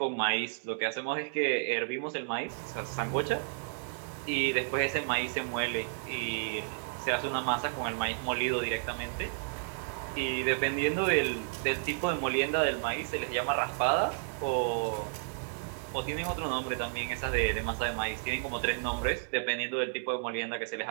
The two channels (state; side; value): silent; left; 56 dB below the other